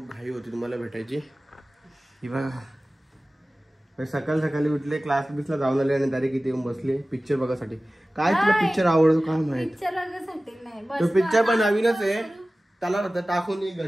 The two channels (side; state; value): both; normal; correlation 0.97